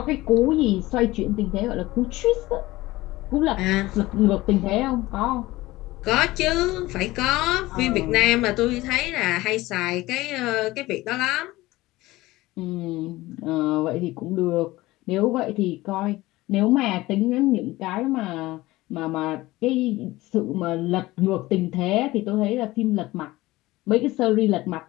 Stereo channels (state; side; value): quieter; right; 18.7 dB